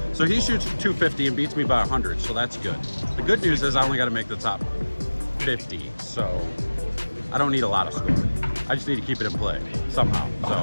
so he shoots 250 and beats me by 100, so that's good. The good news is I only got to make the top 50, so I don't need a lot of scoring. I just need to keep it in play somehow.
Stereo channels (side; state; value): both; inverted; correlation -1.00